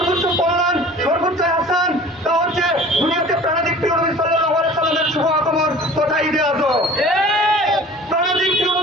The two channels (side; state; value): both; normal; correlation 0.44